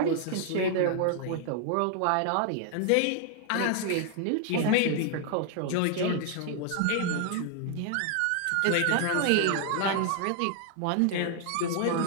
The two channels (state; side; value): different; both; correlation 0.00